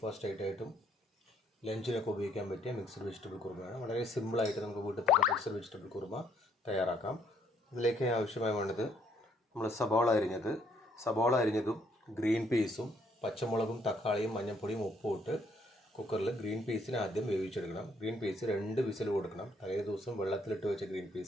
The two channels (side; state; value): both; normal; correlation 0.68